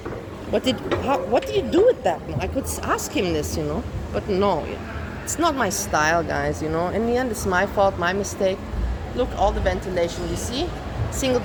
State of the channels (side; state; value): both; identical; correlation 1.00